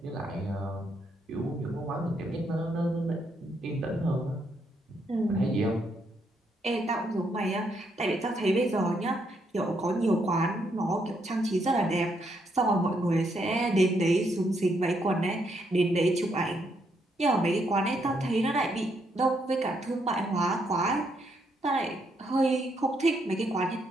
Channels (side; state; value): both; normal; correlation 0.75